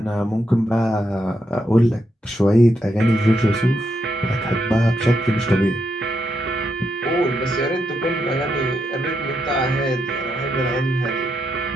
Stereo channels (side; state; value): both; normal; correlation 0.82